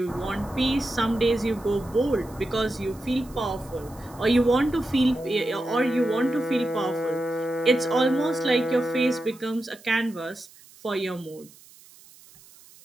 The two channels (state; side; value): noise; right; hiss, 24 dB below the sound